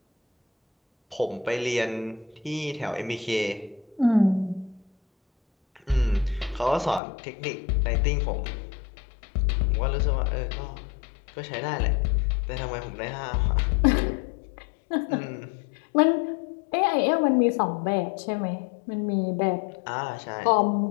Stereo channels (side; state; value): right; drops out; at 7.0 s